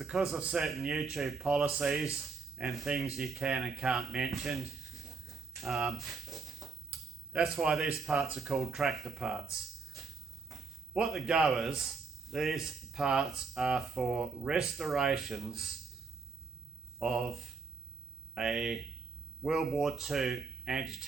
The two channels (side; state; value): left; quieter; 4.6 dB